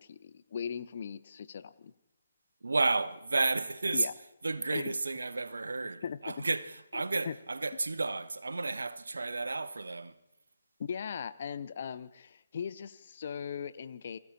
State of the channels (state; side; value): inverted; both; correlation -0.91